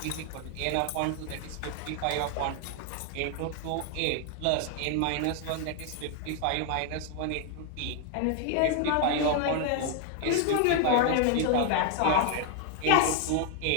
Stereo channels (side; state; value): both; different; correlation 0.00